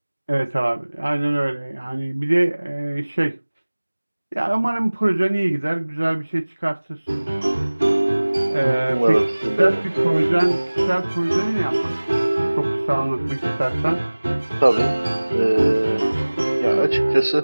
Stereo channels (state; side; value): inverted; both; correlation -1.00